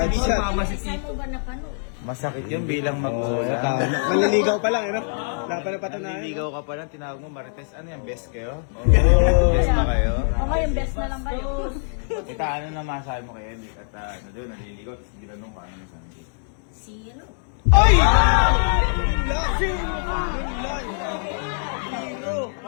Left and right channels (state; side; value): silent; right; 63 dB below the other